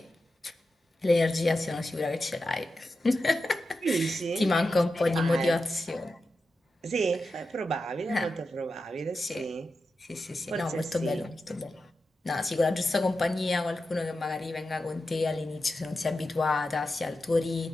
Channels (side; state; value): both; normal; correlation 0.90